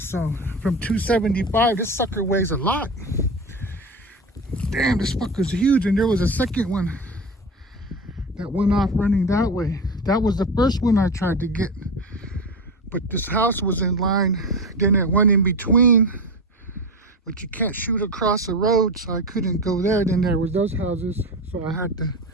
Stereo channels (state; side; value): normal; both; correlation 0.23